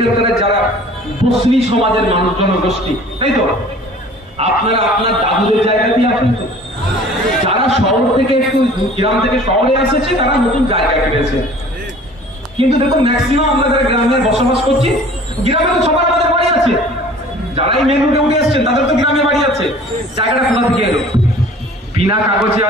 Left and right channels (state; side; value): normal; both; correlation 0.48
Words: যারা বসনি সমাজের মানুষ জনগোষ্ঠী, তাই তো, আপনারা আপনার দাদুদের জায়গাতেই আছেন তো? যারা শহর থেকে একটু গ্রাম থেকে শহরে এসেছে তারা নতুন জায়গা কিনেছে, কিন্তু দেখুন ম্যাক্সিমাম আমরা যারা গ্রামে বসবাস করছি, গ্রামে তো সবার আমাদের বাড়ি আছে। যারাই মেন রুটে উঠে এসছেন তাদের তো গ্রামে বাড়ি আছে। জায়গাটা কোথা থেকে এলো? বিনা কাগজে